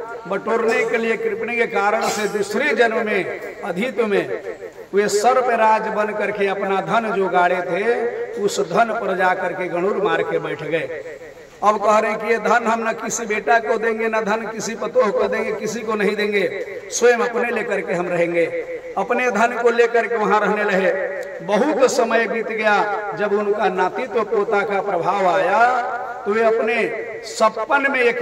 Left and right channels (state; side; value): identical; both; correlation 1.00